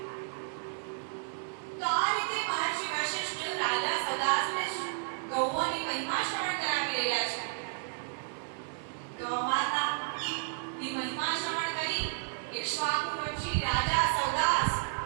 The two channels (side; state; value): left; silent; digital silence